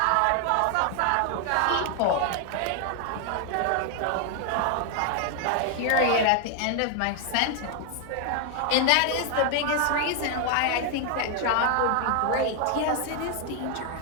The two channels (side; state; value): both; different; correlation 0.00